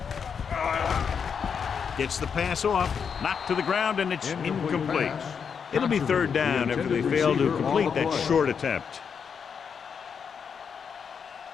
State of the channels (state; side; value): quieter; right; 6.6 dB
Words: Gets the pass off, knocked to the ground, and it's incomplete. It'll be third down after they fail to complete that short attempt.